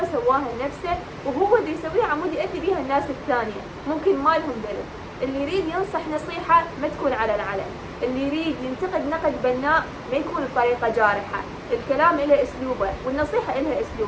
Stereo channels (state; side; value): identical; both; correlation 1.00